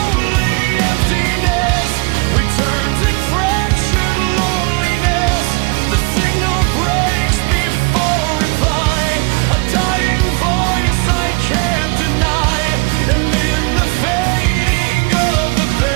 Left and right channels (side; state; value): left; quieter; 28.9 dB